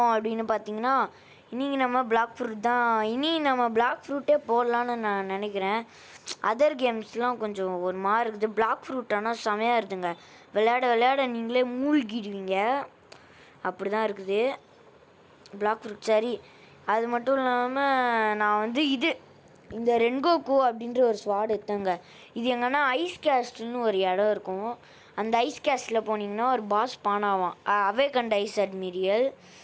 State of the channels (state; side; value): identical; both; correlation 1.00